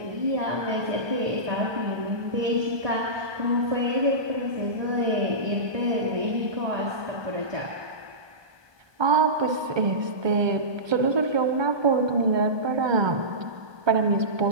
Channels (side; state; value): left; late; 1.2 ms